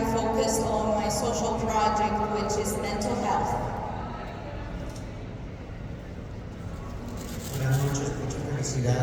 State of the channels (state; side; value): identical; both; correlation 1.00